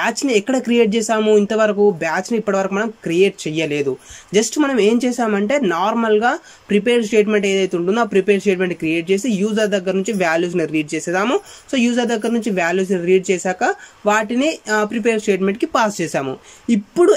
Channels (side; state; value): both; identical; correlation 1.00